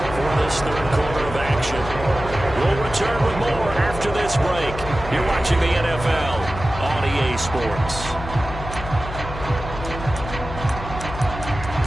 for this third quarter of action. We'll return with more after this break. You're watching the NFL on EA Sports.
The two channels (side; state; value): left; noise; hum, 10 dB below the sound